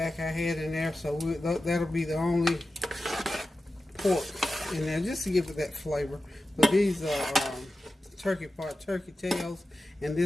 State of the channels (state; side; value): normal; both; correlation 0.93